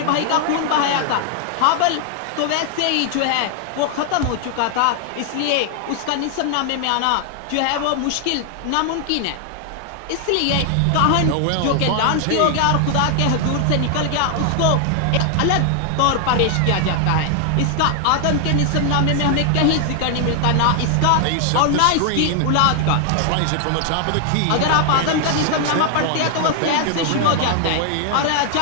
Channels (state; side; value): different; both; correlation 0.00